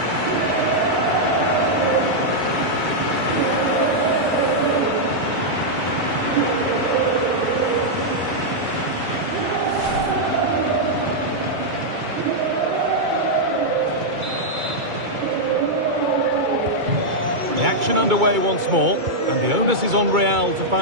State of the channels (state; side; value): late; left; 2.3 ms